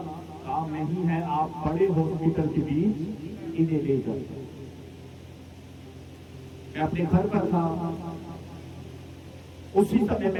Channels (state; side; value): identical; both; correlation 1.00